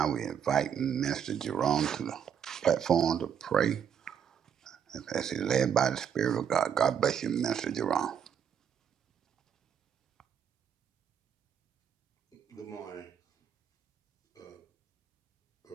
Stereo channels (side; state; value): left; quieter; 8.1 dB